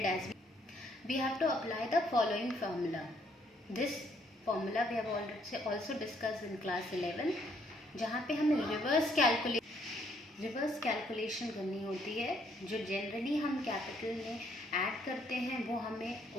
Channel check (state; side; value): normal; both; correlation 0.68